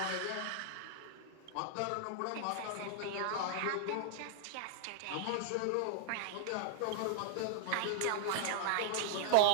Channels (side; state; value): both; different; correlation 0.00